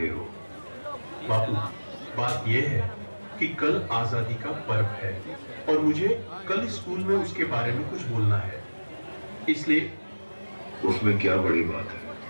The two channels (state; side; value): inverted; both; correlation -1.00